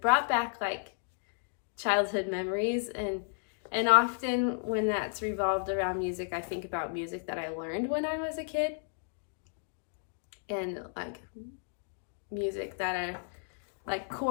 back like childhood memories, and often when that's revolved around music, I think about music that I learned when I was a kid, and like music that are like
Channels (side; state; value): right; silent; digital silence